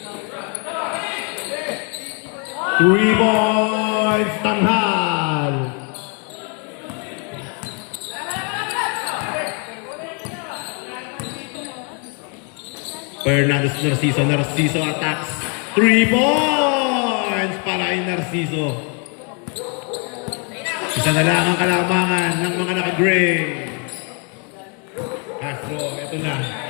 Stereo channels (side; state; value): right; quieter; 37.2 dB